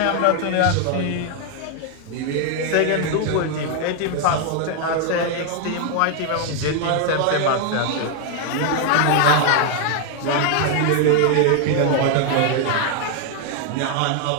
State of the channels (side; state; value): both; different; correlation 0.00